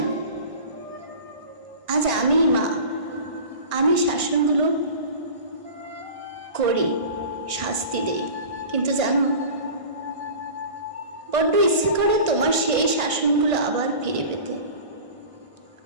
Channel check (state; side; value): late; left; 1.5 ms